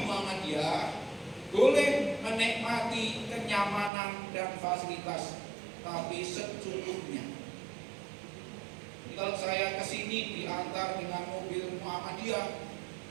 Muhammadiyah boleh menikmati kenyamanan dan fasilitas, tapi secukupnya. Jadi kalau saya kesini diantar dengan mobil Muhammadiyah,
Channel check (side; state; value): left; drops out; at 3.9 s